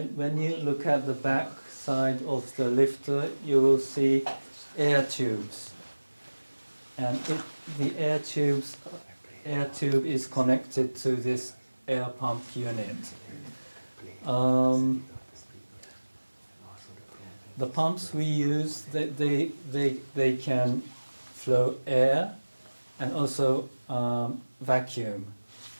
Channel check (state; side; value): inverted; both; correlation -1.00